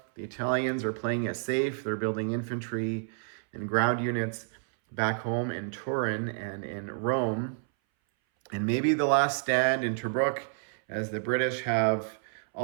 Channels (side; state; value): left; silent; 58 dB below the other